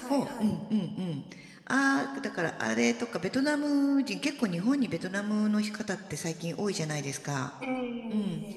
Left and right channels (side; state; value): both; identical; correlation 1.00